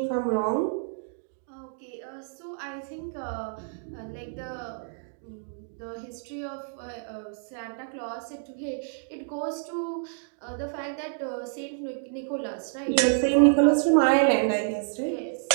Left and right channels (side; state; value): left; silent; digital silence